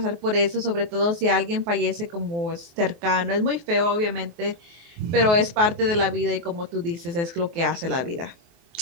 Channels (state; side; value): late; left; 24 ms